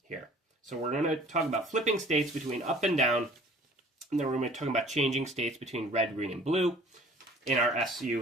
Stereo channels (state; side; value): normal; both; correlation 0.50